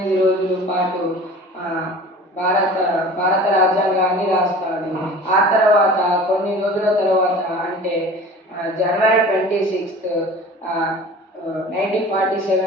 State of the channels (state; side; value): normal; both; correlation 0.41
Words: రోజుల పాటు భారత రాజ్యాంగాన్ని రాస్తాడు. ఆ తర్వాత కొన్ని రోజుల తర్వాత అంటే జనవరి 26,